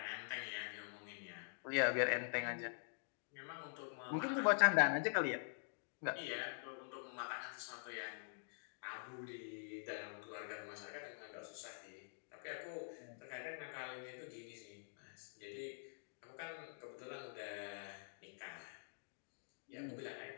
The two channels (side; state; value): right; silent; digital silence